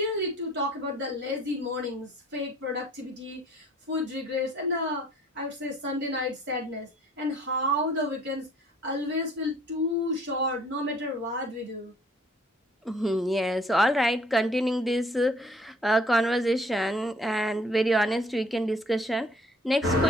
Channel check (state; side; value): normal; both; correlation 0.57